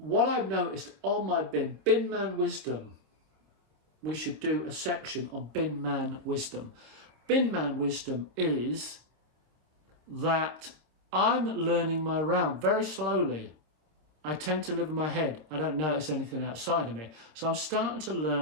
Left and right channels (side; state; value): left; late; 26 ms